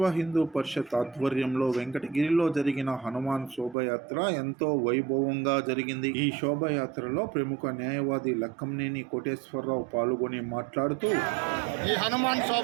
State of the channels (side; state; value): left; drops out; at 3.8 s